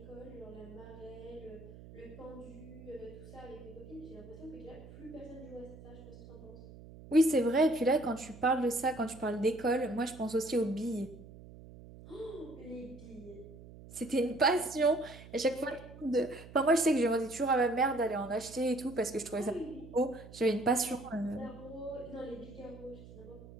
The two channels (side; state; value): right; noise; hum, 17 dB below the sound